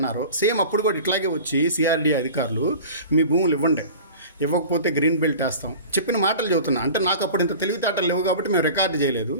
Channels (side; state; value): both; inverted; correlation -0.39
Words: సేమ్ అప్పుడు కూడా ఇట్లాగే వచ్చి సిఆర్డీ అధికారులు మీ భూములు ఇవ్వకపోతే గ్రీన్ బెల్ట్ వేస్తాం చెప్పిన మాటలు చెబుతున్నా. అంటే నాకు అప్పుడు ఇంత తెలివితేటలు లేవు కాబట్టి మేము రికార్డు చేయలేదు,